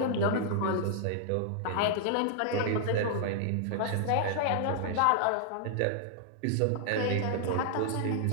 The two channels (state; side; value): different; both; correlation -0.01